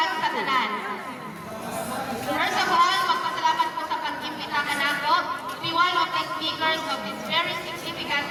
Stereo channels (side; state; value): both; identical; correlation 1.00